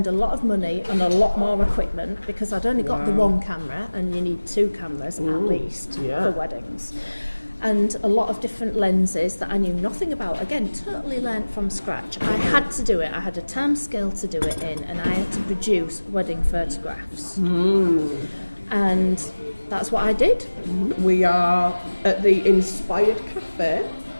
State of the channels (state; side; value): inverted; both; correlation -1.00